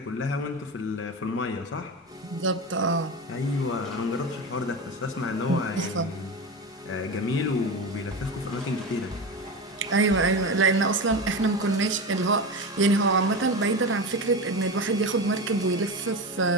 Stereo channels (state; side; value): normal; both; correlation 0.23